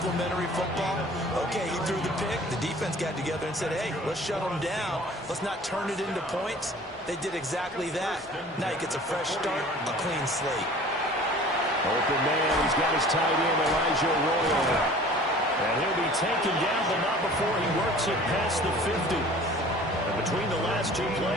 football? Okay, he threw the pick. The defense got together and said, hey, let's shut them down. Let's not turn it into points. They did exactly that. Now he gets a fresh start, a clean slate. Open man, he's got his tight end, Elijah Royal. And he'll be taken down, but not before he works it past the 50. And between the last two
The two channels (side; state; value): both; normal; correlation 0.47